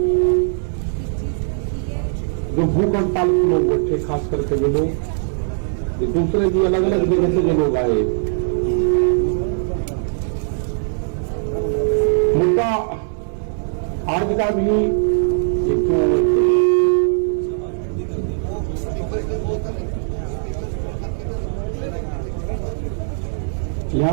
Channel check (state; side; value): silent; left; 65 dB below the other